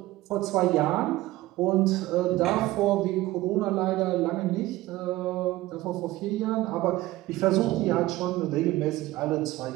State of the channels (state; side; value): quieter; left; 17.4 dB